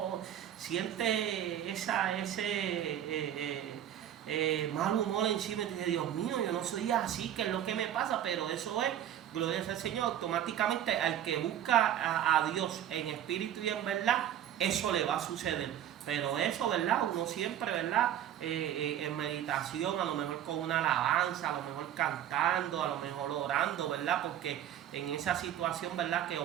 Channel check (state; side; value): quieter; left; 10.9 dB